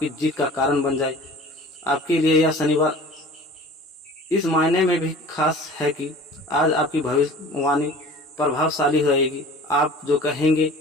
जीत का कारण बन जाए। आपके लिए यह शनिवार इस मायने में भी खास है कि आज आपकी भविष्यवाणी प्रभावशाली रहेगी। आप जो कहेंगे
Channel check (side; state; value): both; normal; correlation 0.43